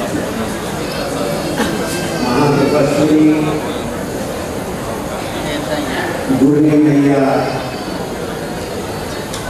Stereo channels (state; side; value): identical; both; correlation 1.00